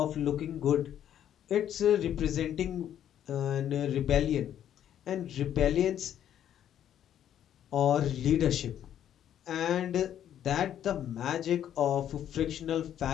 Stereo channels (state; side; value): quieter; right; 10.4 dB